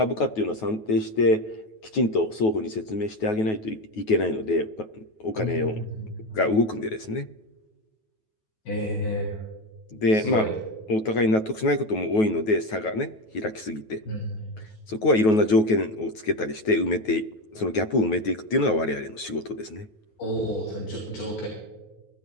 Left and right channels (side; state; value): right; late; 9.3 ms